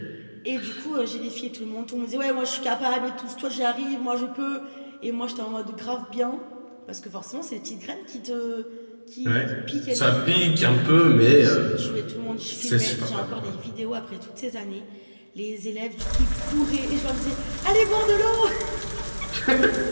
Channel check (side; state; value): both; inverted; correlation -1.00